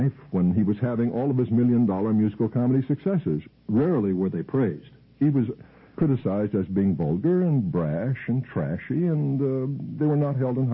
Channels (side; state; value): both; identical; correlation 1.00